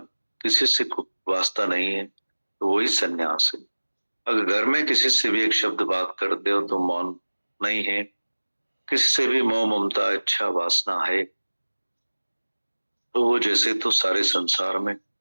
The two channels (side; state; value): both; inverted; correlation -1.00